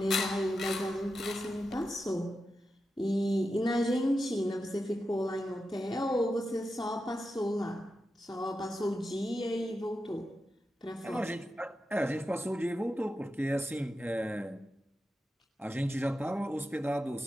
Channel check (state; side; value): normal; both; correlation 0.90